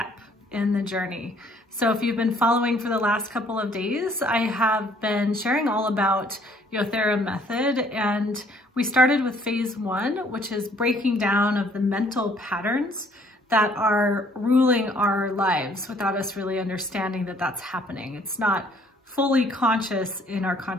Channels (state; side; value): normal; both; correlation 0.61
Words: in the journey. So if you've been following for the last couple of days, I have been sharing all about Yothera Method, and we started with phase 1, which is breaking down of the mental patterns that are ruling our lives without us really understanding that that's happening. It's not fully conscious in our